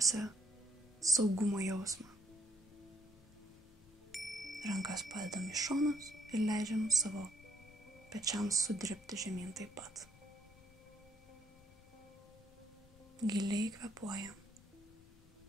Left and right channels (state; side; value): noise; left; rumble, 24 dB below the sound